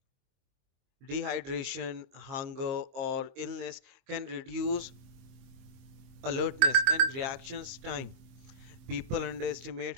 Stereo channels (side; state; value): left; late; 23 ms